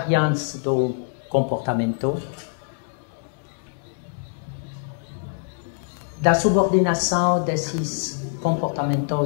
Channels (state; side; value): silent; right; digital silence